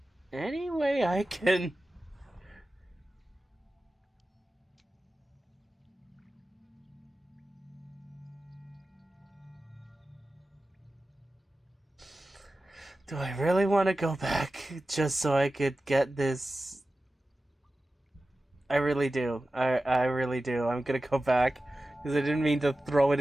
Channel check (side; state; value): both; normal; correlation 0.95